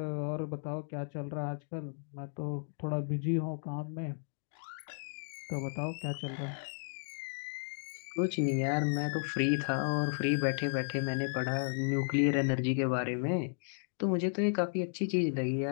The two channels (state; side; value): silent; right; digital silence